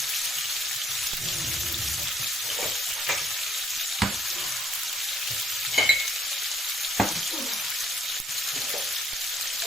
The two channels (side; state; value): both; normal; correlation 0.67